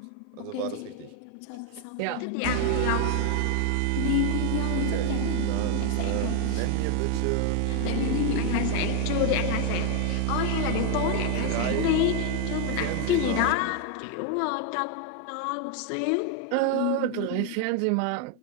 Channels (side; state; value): both; different; correlation 0.01